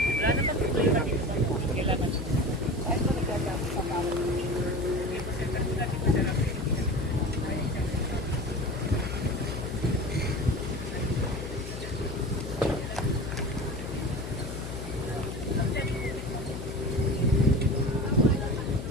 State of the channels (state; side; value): noise; left; hum, 8 dB below the sound